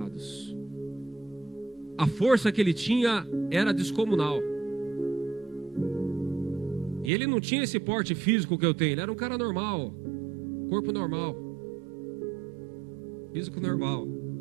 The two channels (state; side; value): drops out; left; at 7.1 s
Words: A força que ele tinha era descomunal. E ele não tinha esse porte físico que eu tenho. Ele era um cara normal, corpo normal, físico normal.